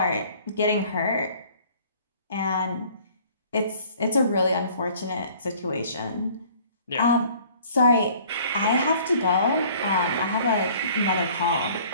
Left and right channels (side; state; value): both; inverted; correlation -0.54